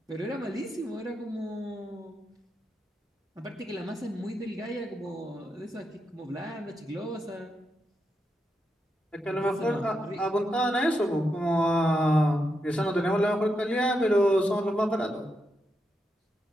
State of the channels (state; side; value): normal; both; correlation 0.84